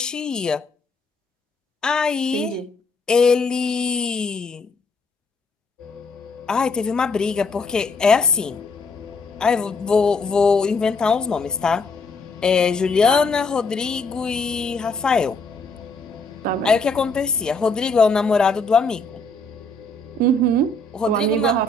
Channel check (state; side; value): quieter; right; 3.3 dB